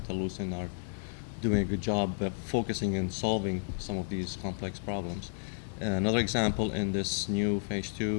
are doing a good job focusing and solving some of these complex problems. Another example in this new phase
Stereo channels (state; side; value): silent; right; digital silence